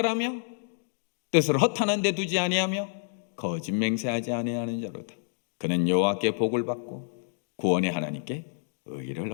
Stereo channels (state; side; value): silent; right; digital silence